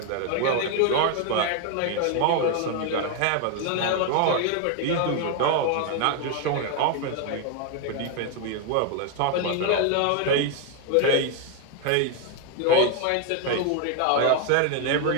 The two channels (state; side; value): different; both; correlation 0.01